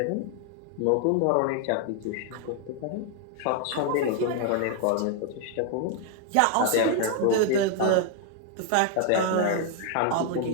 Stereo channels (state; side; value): different; both; correlation 0.00